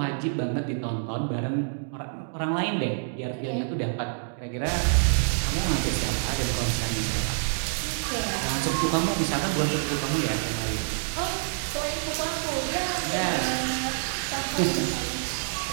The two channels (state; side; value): silent; left; digital silence